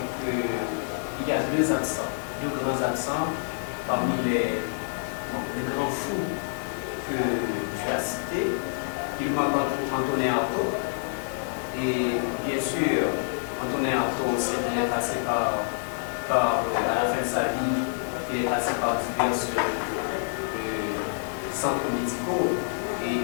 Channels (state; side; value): silent; right; digital silence